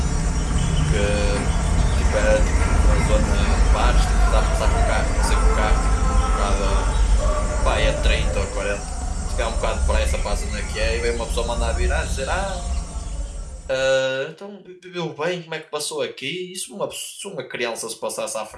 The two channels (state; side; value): identical; both; correlation 1.00